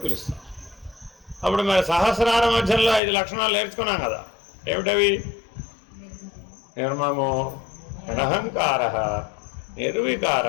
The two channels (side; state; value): right; drops out; at 3.0 s